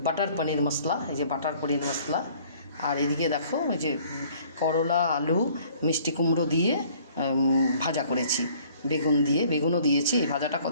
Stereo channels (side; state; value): both; inverted; correlation -0.56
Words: বাটার পনির মশলা, এই যে বাটার পনির মশলা। আর এদিকে দেখো এই যে করলা, আলু, মিষ্টি কুমড়ো দিয়ে ভাজা করেছি, বেগুন দিয়ে, বেগুনও দিয়েছি। এই ভাজাটা